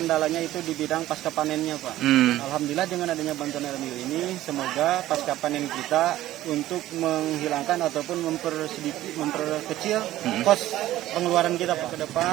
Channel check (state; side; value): quieter; left; 14.7 dB